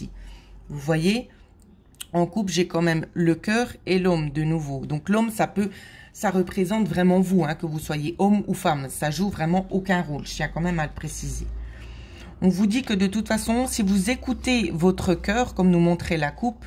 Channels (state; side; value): identical; both; correlation 1.00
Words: Vous voyez, en couple, j'ai quand même le cœur et l'homme de nouveau. Donc l'homme, ça représente vraiment vous, hein, que vous soyez homme ou femme. Ça joue vraiment aucun rôle. Je tiens quand même à le préciser. On vous dit que de toute façon, si vous écoutez votre cœur, comme nous montrait la